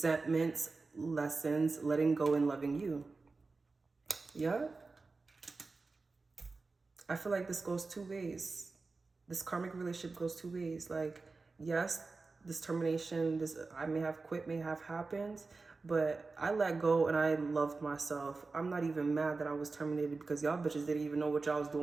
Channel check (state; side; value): quieter; left; 3.9 dB